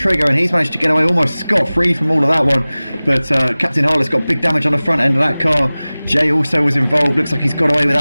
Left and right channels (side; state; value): both; inverted; correlation -0.99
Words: and he's managed to get away almost scot-free from all of that one. But Captain Harlock's got big damage on the front end of that car. Jay also was involved. Looks like he's got away